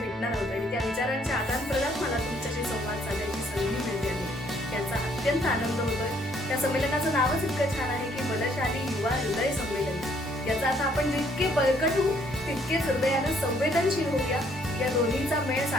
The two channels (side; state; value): both; normal; correlation 0.66